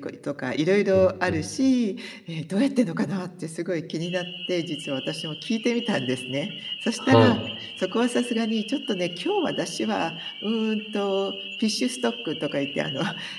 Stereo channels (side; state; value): both; identical; correlation 1.00